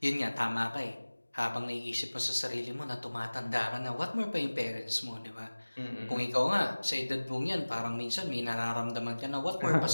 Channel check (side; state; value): both; inverted; correlation -1.00